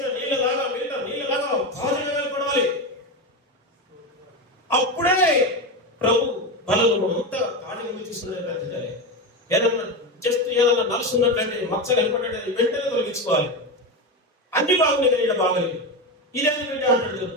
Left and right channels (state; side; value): normal; both; correlation 0.17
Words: నీళ్ళలాగా తాజాగా వెళ్ళబడాలి. అప్పుడే ప్రభు బలము అంతా తాజాగా తీసుకునే ఏదన్నా నలుసున్నట్లయితే మచ్చ కనపడ్డట్టు వెంటనే తొలగించుకోవాలి. అన్ని బాగున్నాయి కానీ బాగలేదు, ఇదేదో బిడ్డ అంటాడు,